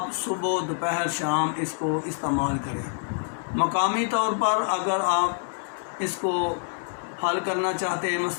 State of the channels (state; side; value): silent; right; 61 dB below the other